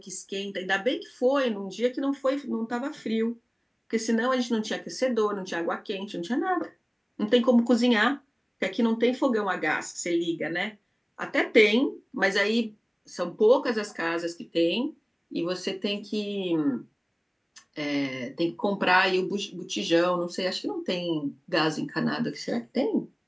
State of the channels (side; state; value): both; identical; correlation 1.00